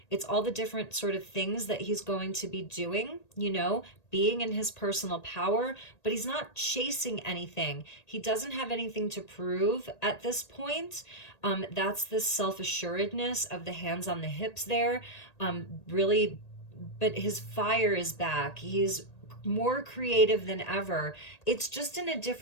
it's all the different sort of things that he's going to be doing, you know, being in his personal power, but he's not chasing anything. He doesn't have anything to prove at this point. That's the self-assuredness of the hands on the hips there. Really, but his fire is back. He's more creative than ever. It's just in a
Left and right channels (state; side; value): late; right; 1.8 ms